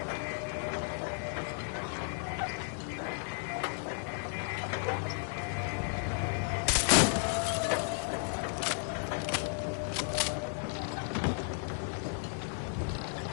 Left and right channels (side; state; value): right; silent; 55 dB below the other